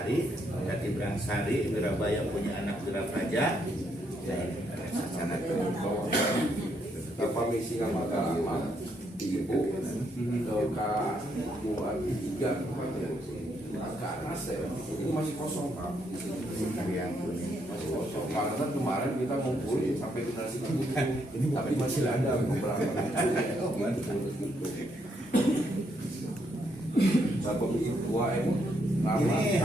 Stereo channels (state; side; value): normal; both; correlation 0.75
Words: Wirabaya punya anak Wirapraja. Ya ini area Sacanata. Tanpa misi nama agama ibu ke 2 3 ke atas ya ini masih kosong Pak. Masih kosong. Karena kemarin kita ngumpul sampai generasi kebukan tapi masih ada beberapa Bapak Ibu Ini